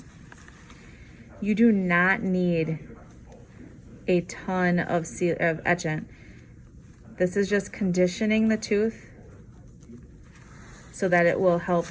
You do not need a ton of etchant. This is just conditioning the tooth so that it will help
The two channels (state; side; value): identical; both; correlation 1.00